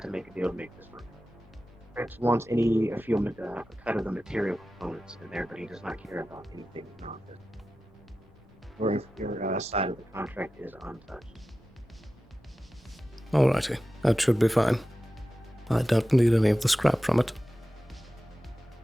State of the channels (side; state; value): both; normal; correlation 0.94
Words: to make a deal to make this work. Prince wants a cut of the material components in there, but he does not care about anything non-business. Your side of the contract is untouched. Alrighty. That should be fine. I don't need any of the scrap from it.